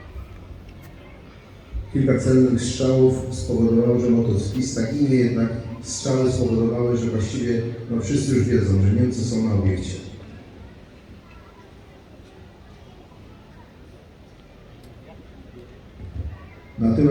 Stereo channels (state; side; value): identical; both; correlation 1.00